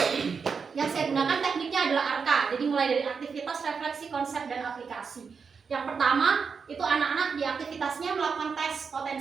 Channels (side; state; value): left; quieter; 5.7 dB